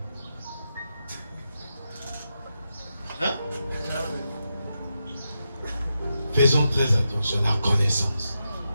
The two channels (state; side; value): inverted; both; correlation -0.87